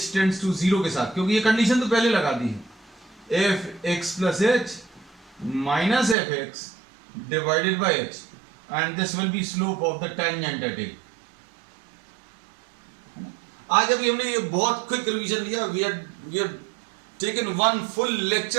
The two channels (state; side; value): drops out; left; at 6.2 s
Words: टेंड्स टू 0 के साथ, क्योंकि ये कंडीशन तो पहले लगा दी है, fx plus h minus fx divided by h, and this will be slope of the tangent at a। आज अभी हमने ये बहुत क्विक रिवीजन लिया, we have taken one full